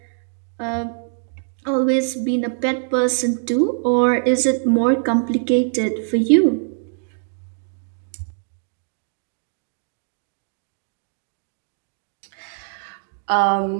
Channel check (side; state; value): left; silent; digital silence